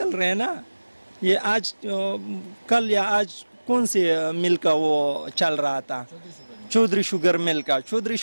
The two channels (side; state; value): both; inverted; correlation -1.00